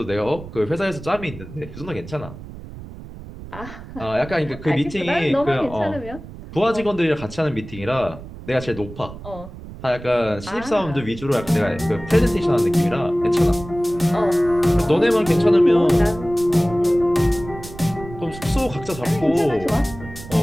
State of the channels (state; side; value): noise; right; rumble, 14 dB below the sound